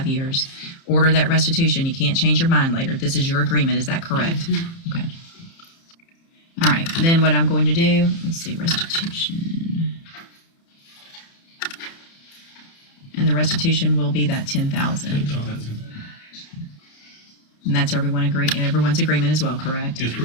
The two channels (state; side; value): late; right; 30 ms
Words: years, order that restitution, you can't change your mind later. This is your agreement. Is that correct? Okay. All right. Then what I'm going to do, let's see, restitution. And the restitution will be that $10,000. And that's everyone's agreement as well, correct? Is